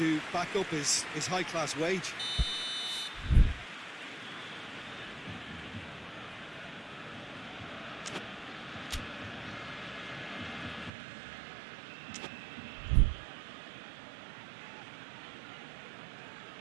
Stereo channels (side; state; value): left; drops out; at 10.9 s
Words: back up his high-class wage.